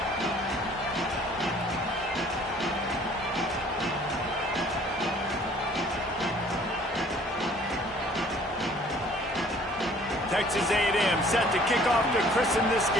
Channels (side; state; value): both; normal; correlation 0.55